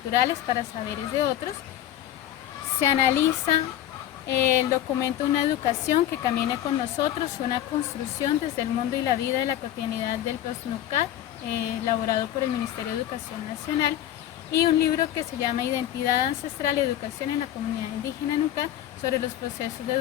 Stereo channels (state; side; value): quieter; right; 12.1 dB